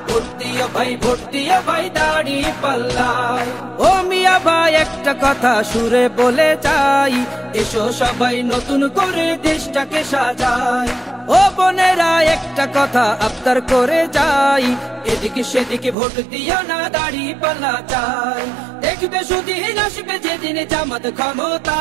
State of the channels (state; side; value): drops out; left; at 16.0 s